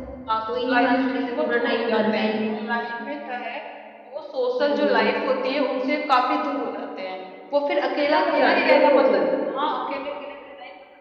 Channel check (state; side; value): identical; both; correlation 1.00